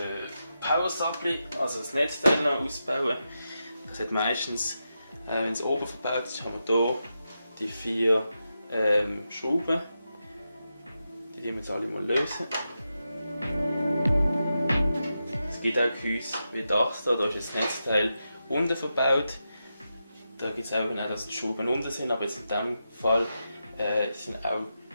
Power Supply, also das Netzteil noch ausbauen. Das hat meistens, wenn es oben verbaut ist, haben wir hier die 4 Schrauben. Die wir jetzt alle mal lösen. Es gibt auch Gehäuse wie das hier, da ist das Netzteil unten verbaut. Da gibt es auch, dass die Schrauben unten sind, aber jetzt in diesem Fall sind auch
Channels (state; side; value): inverted; both; correlation -0.88